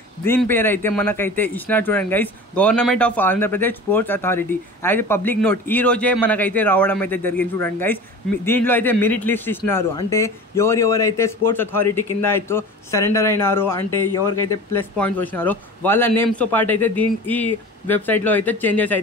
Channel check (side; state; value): both; normal; correlation 0.36